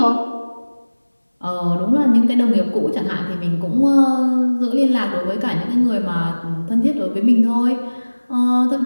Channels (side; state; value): both; inverted; correlation -1.00